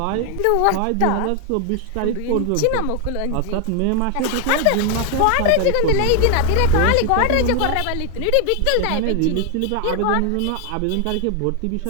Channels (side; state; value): both; different; correlation 0.00